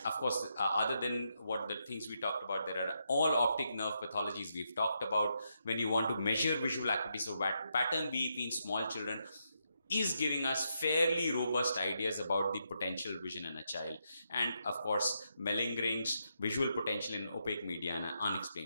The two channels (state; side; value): inverted; both; correlation -0.81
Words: of course, other than what the things we talked about, there are all optic nerve pathologies we've talked about. When you want to measure visual acuity, so pattern VEP in small children is giving us fairly robust ideas about the potential vision in a child. And of course, malingering's visual potential in opaque media and